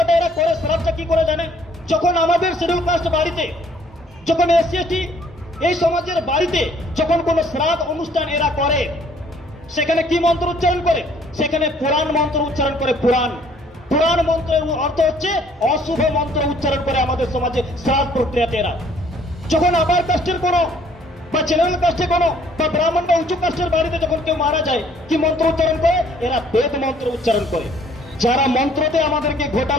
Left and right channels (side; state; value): both; normal; correlation 0.60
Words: এরা করে, শ্রাদ্ধটা কি করে জানে? যখন আমাদের শিডিউল কাস্ট বাড়িতে, যখন এসসি এসটি এই সমাজের বাড়িতে যখন কোনো শ্রাদ্ধ অনুষ্ঠান এরা করে, সেখানে কি মন্ত্র উচ্চারণ করে? সেখানে পুরাণ মন্ত্র উচ্চারণ করে। পুরাণ মন্ত্রের অর্থ হচ্ছে অশুভ মন্ত্র উচ্চারণ করে আমাদের সমাজে শ্রাদ্ধ প্রক্রিয়াতে এরা। যখন আবার কাস্টের কোনো বা জেনারেল কাস্টে কোনো বা ব্রাহ্মণ বা উঁচু কাস্টের বাড়িতে যখন কেউ মারা যায়, কি মন্ত্র উচ্চারণ করে? এরা বেদ মন্ত্র উচ্চারণ করে। যারা মন্ত্রতে আমাদেরকে